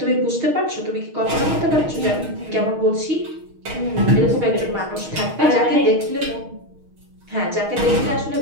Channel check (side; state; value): left; late; 6.4 ms